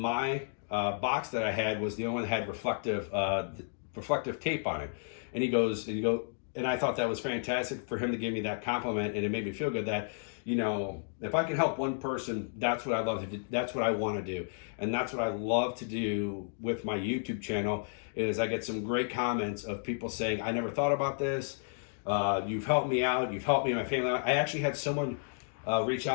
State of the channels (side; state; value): right; silent; digital silence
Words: box that I had was the only one that had reflective tape on it. And he goes, and I thought that was fantastic for him to give me that compliment, and it made me feel good that you know, if I can help one person, that's what I love to do. That's what I want to do. And that's what I love to do with my YouTube channel is I get some great comments of people saying, I never thought about this. You've helped me out. You've helped me and my family out. I actually had someone reach